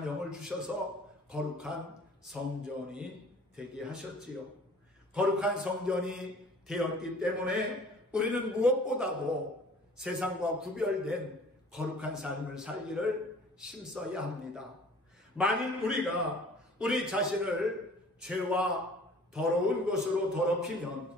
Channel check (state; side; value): normal; both; correlation 0.50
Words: 영을 주셔서 거룩한 성전이 되게 하셨지요. 거룩한 성전이 되었기 때문에 우리는 무엇보다도 세상과 구별된 거룩한 삶을 살기를 힘써야 합니다. 만일 우리가 우리 자신을 죄와 더러운 것으로 더럽히면